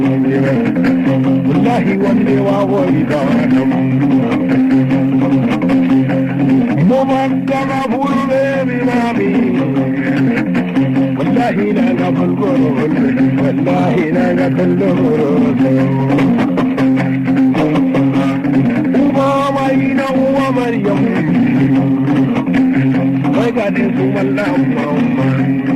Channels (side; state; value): both; identical; correlation 1.00